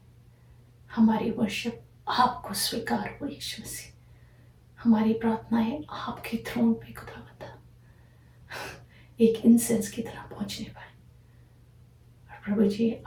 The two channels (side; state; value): both; identical; correlation 1.00